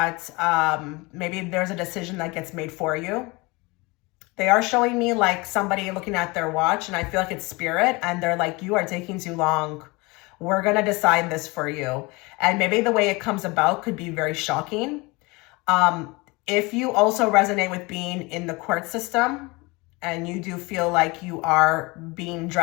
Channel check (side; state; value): right; quieter; 25.0 dB